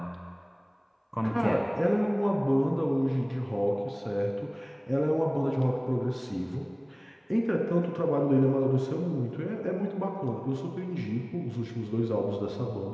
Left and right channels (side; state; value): both; identical; correlation 1.00